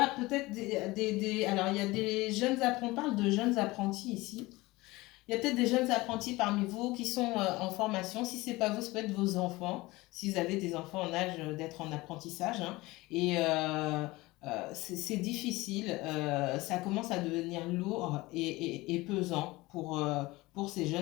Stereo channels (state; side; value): quieter; right; 20.8 dB